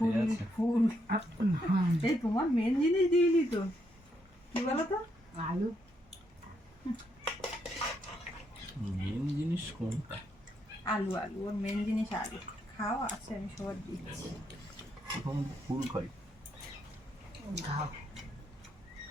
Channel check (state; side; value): normal; both; correlation 0.77